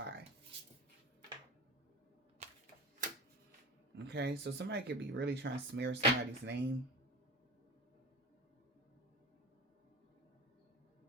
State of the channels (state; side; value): normal; both; correlation 0.31